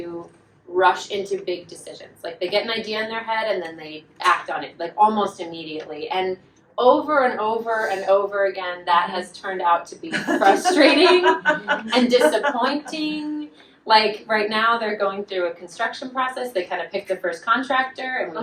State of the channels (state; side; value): identical; both; correlation 1.00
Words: rush into big decisions. Like they get an idea in their head and then they act on it, like almost immediately. And over and over and over again, that has turned out to be frustrating and disappointing. Like right now, they're going through a construction process. They kind of picked the first contractor, and we